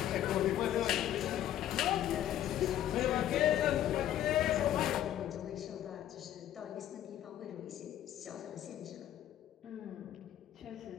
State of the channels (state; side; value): quieter; right; 11.8 dB